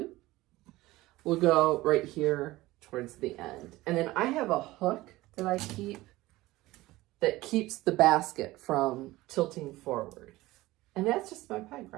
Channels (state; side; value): quieter; left; 18.4 dB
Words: will go right here towards the end. And then I have a hook that I keep that keeps the basket from tilting forward. And that's just my peg